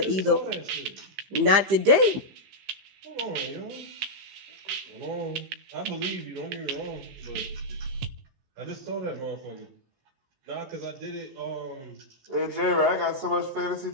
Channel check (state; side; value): late; left; 15 ms